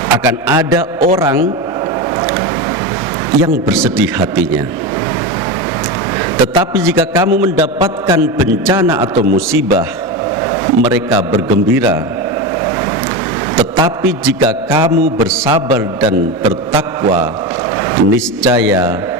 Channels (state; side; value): normal; both; correlation 0.19